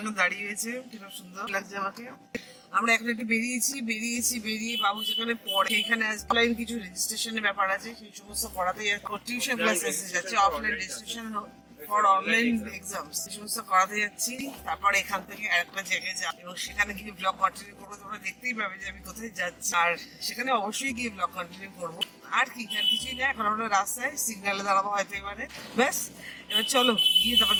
দাঁড়িয়ে হয়েছে, কিরকম সুন্দর লাগছে আমাকে। আমরা এখন একটু বেরিয়ে বাবু যেখানে পড়ে সেখানে অফলাইন কিছু রেজিস্ট্রেশনের ব্যাপার আছে, সেই সমস্ত করাতে টিউশন ক্লাস এসে যাচ্ছে, offline registration for online exams এই সমস্ত করাতে যাচ্ছি। তারপর এখান থেকে আরেকটা জায়গায় যাব এবং সেখানে গিয়ে ব্লগ কন্টিনিউ করবো। তোমরা দেখতেই পাবে যে আমি কোথায় যাচ্ছি, আর সেখানে অবশ্যই গিয়ে ব্লগ কন্টিনিউ করবো। আর কি, আর কিছুই না, এখন আমরা রাস্তায় সিগন্যালে দাঁড়াবো হয়তো এবারে। ব্যাস, এবার চলো গিয়ে তারপর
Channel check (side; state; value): both; identical; correlation 1.00